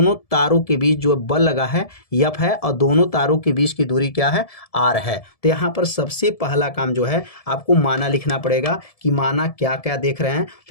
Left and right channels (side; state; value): right; late; 1.7 ms